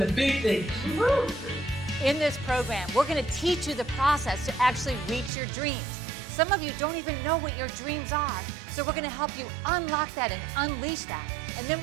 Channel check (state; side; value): drops out; left; at 5.3 s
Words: the big things. In this program, we're going to teach you the process to actually reach your dreams. Some of you don't even know what your dreams are, so we're going to help you unlock that and unleash that. And then